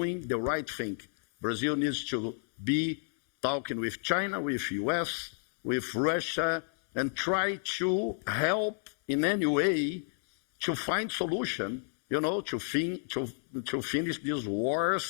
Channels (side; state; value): right; silent; 57 dB below the other